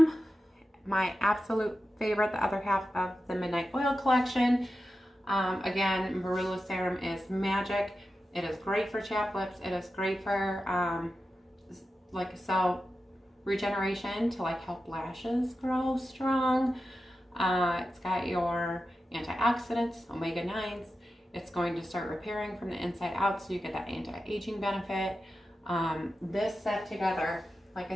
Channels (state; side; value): normal; both; correlation 0.91